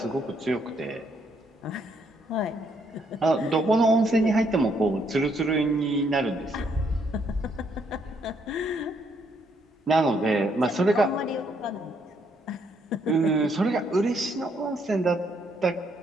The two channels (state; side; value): normal; both; correlation 0.72